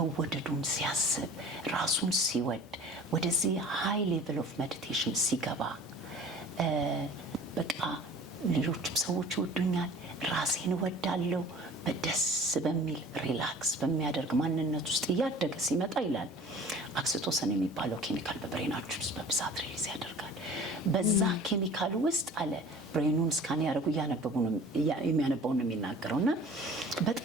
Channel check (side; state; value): both; normal; correlation 0.45